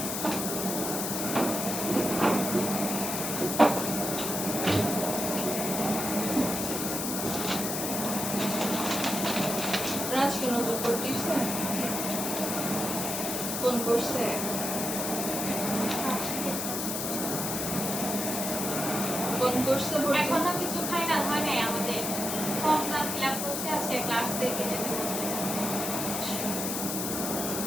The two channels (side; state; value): left; noise; hiss, 2 dB below the sound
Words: রাজ কি নতুন করতেছে কোন করছে কোন করছে ভর্তি? এখনো কিছু ফাইনাল হয় নাই আমাদের ফর্মটা ফিল আপ করছে আজকে ক্লাস দেখে যেতে বলছে